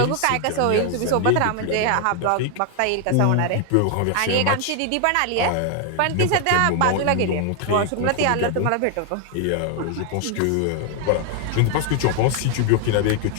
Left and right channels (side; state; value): both; different; correlation 0.00